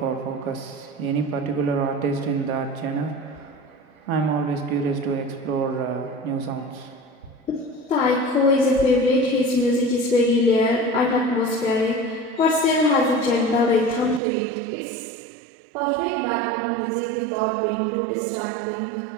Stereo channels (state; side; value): drops out; left; at 14.2 s